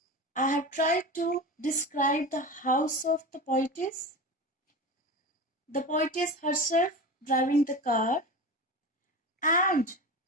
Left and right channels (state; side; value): normal; both; correlation 0.28